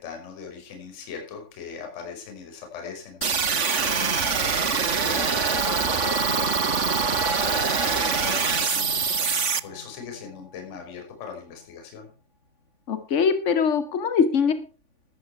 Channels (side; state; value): right; late; 3.5 ms